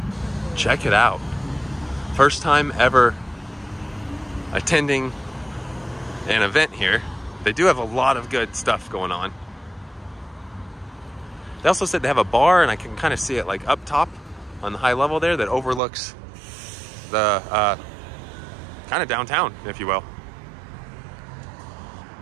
Check it out. First time ever attending an event here. They do have a lot of good stuff going on. They also said they have a bar, and I can kind of see it like up top on the high level there that overlooks the kind of downtown, if you will.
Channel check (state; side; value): drops out; left; at 15.8 s